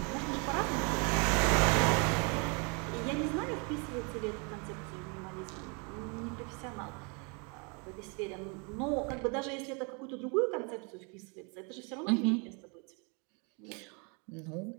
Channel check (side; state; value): left; quieter; 33.7 dB